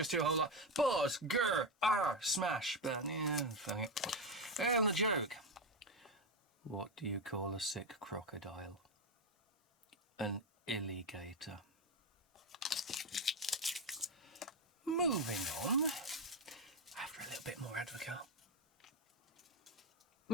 do a whole lot. Buzz, grr, smash. But yeah, fuck it. And the joke. What do you call a sick crocodile? An alligator. Moving on. After a little bit more Advocaat.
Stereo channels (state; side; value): normal; both; correlation 0.11